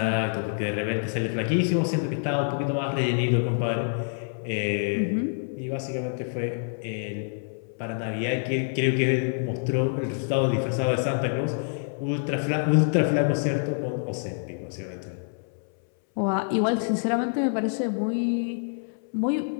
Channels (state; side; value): silent; right; 60 dB below the other